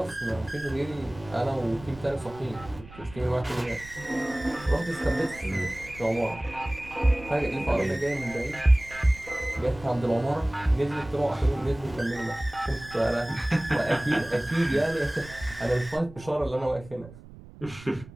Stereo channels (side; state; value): right; noise; rumble, 18 dB below the sound